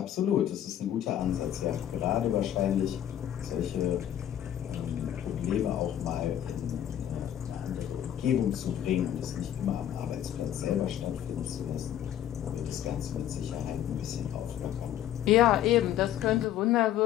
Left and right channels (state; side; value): quieter; right; 11.1 dB